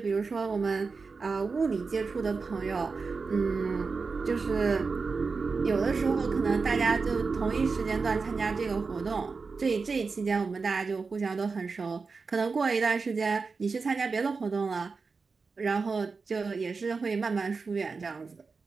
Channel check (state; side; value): quieter; left; 4.6 dB